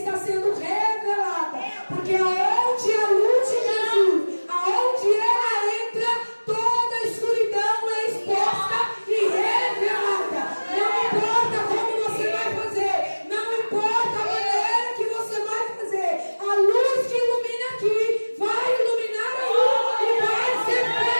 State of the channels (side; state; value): both; inverted; correlation -1.00